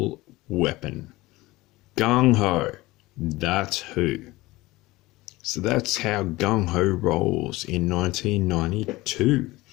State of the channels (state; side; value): quieter; right; 19.7 dB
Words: weapon? Gung Ho. That's who. So that's how Gung Ho rolls in 1992.